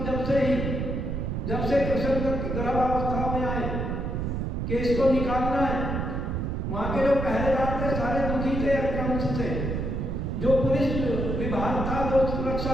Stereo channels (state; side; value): noise; right; rumble, 2 dB below the sound